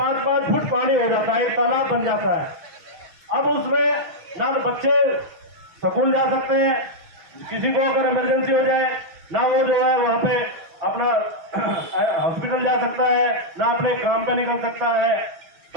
फुट पानी हो जाता है, एक तालाब बन जाता है। अब उसमें ना तो बच्चे स्कूल जा सकते हैं, किसी को अगर इमरजेंसी हो जाए ना वो जो है वहाँ पे अपना हॉस्पिटल जा सकता है, ना अपने काम पे निकल सकता है।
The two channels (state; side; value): late; left; 6.3 ms